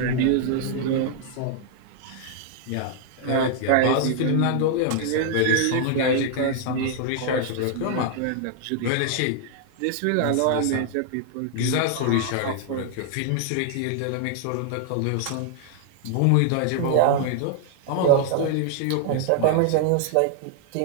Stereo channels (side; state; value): both; different; correlation 0.00